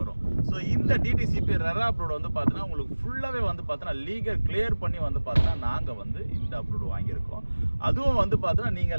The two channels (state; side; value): inverted; both; correlation -1.00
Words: ஸோ இந்த டிடிசிபி ரெரா அப்ரூவ் வந்து பார்த்தீங்கன்னா உங்களுக்கு ஃபுல்லாகவே வந்து பார்த்தீங்கன்னா லீகல் கிளியர் பண்ணி வந்து பார்த்தீங்கன்னா நாங்கள் வந்து இந்த அப்ரூவ் வாங்கியிருக்கோம். அதுவும் வந்து பார்த்தீங்கன்னா